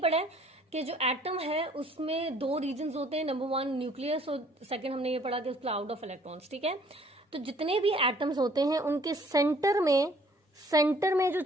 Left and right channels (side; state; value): both; normal; correlation 0.58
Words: है कि जो एटम है उसमें दो रीजन्स होते हैं, नंबर 1 न्यूक्लियस और सेकंड हमने ये पढ़ा कि क्लाउड ऑफ इलेक्ट्रॉन्स, ठीक है। तो जितने भी एटम्स होते हैं उनके सेंटर में जो